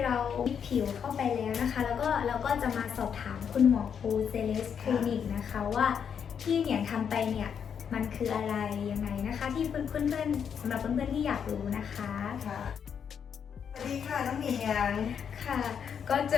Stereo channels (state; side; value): quieter; right; 7.5 dB